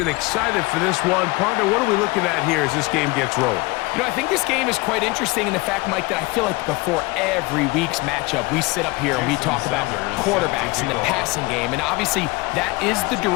excited for this one. Partner, what are we looking at here as this game gets rolling? You know, I think this game is quite interesting in the fact, Mike, that I feel like before every week's matchup, we sit up here and we talk about quarterbacks and the passing game. And obviously, that is the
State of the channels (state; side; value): quieter; right; 23.5 dB